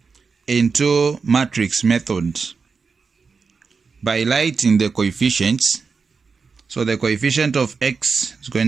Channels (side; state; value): left; quieter; 5.0 dB